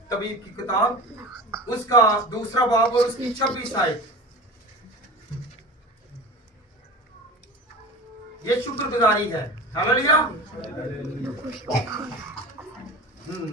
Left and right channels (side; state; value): both; normal; correlation 0.33